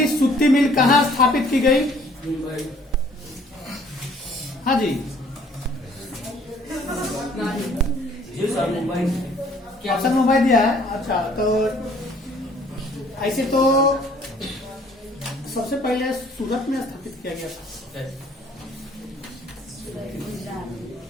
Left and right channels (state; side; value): normal; both; correlation 0.58